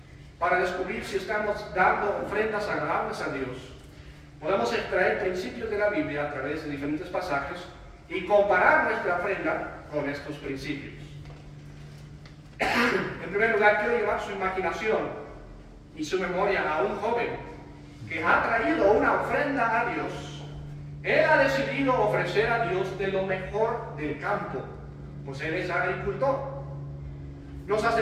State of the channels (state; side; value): identical; both; correlation 1.00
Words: Para descubrir si estamos dando ofrendas agradables a Dios, podemos extraer principios de la Biblia a través de diferentes pasajes y comparar nuestra ofrenda con estos principios. En primer lugar, quiero llevar su imaginación y su memoria a un joven que ha traído una ofrenda a Dios. Él ha decidido ofrecer a Dios de lo mejor del campo, pues él es agricultor. Nos